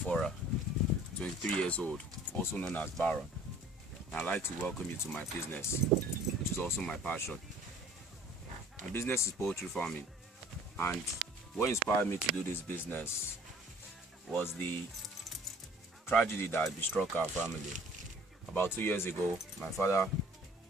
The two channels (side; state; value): both; normal; correlation 0.52